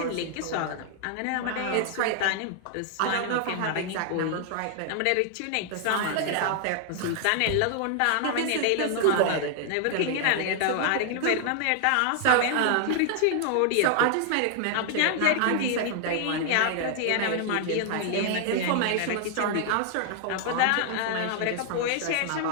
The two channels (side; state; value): both; different; correlation 0.00